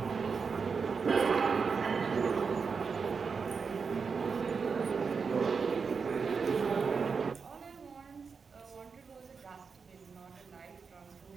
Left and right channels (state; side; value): quieter; left; 5.4 dB